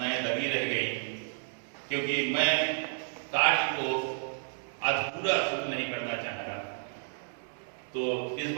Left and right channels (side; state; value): left; silent; digital silence